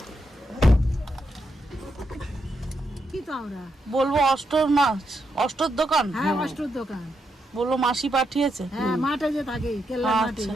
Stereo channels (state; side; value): normal; both; correlation 0.82